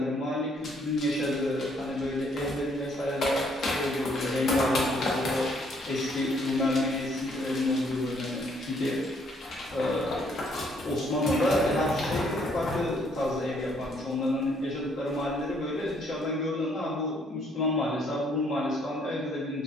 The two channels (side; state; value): both; normal; correlation 0.67